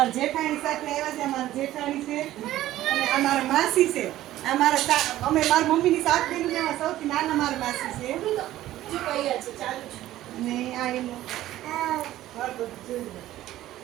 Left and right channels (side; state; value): left; quieter; 14.4 dB